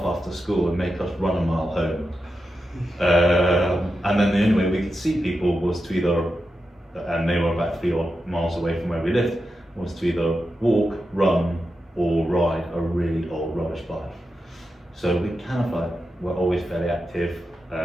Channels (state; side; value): normal; both; correlation 0.89